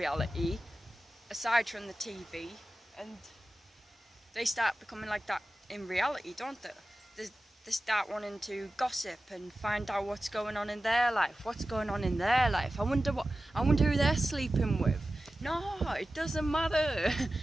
aside from the TV, and they start becoming like that in reality, don't they? They start wanting to gossip and find out what's going on in their life. What's going on in their life? I wonder who they're sleeping with. No, it doesn't matter.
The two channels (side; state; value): both; normal; correlation 0.95